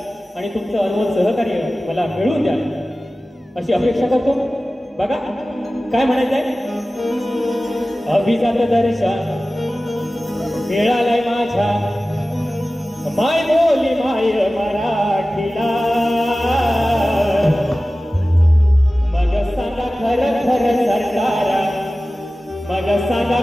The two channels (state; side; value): normal; both; correlation 0.96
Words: आणि तुमचं अनमोल सहकार्य मला मिळवून द्याल अशी अपेक्षा करतो. बघा काय म्हणायचंय. अभिजात दर्जा मिळालाय माझ्या माय बोली माय मराठीला. मग सांगा खरं खरं सरकारा, मग सांगा